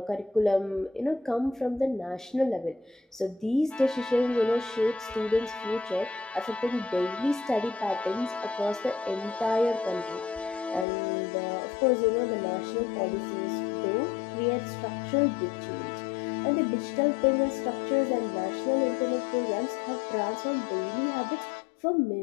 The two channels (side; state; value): right; drops out; at 10.9 s